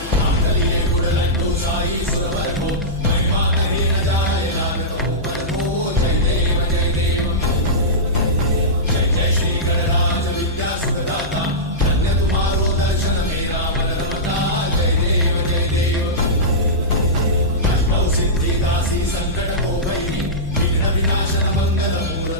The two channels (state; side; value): noise; left; hum, 13 dB below the sound